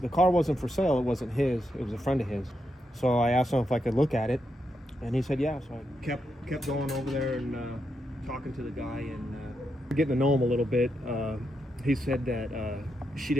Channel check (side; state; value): both; normal; correlation 0.83